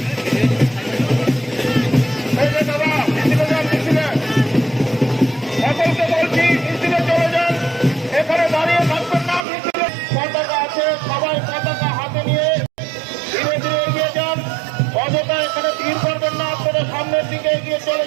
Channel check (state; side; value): drops out; left; at 9.5 s